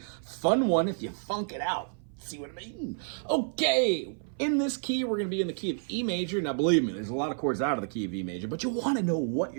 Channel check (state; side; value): silent; left; 55 dB below the other